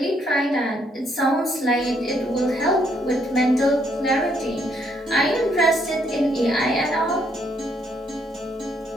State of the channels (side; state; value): both; normal; correlation 0.71